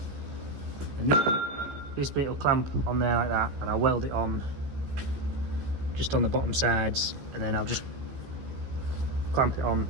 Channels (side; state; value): left; late; 15 ms